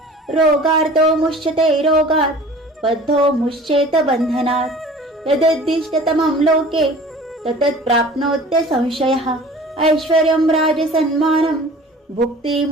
रोगार्तो मुच्यते रोगात् बद्धो मुच्येत बन्धनात् यदुद्दिष्टतमं लोके ततत् प्राप्नोत्य संशयः ऐश्वर्यं राजसन्मानं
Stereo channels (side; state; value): both; normal; correlation 0.44